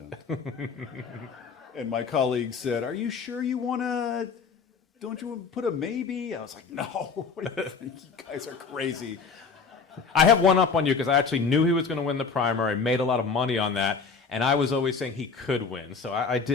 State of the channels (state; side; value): quieter; right; 5.1 dB